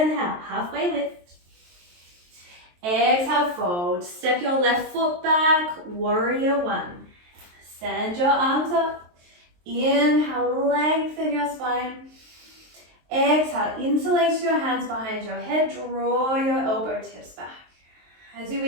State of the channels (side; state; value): left; late; 23 ms